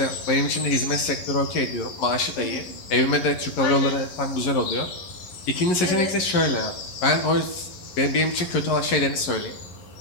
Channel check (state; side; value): late; right; 11 ms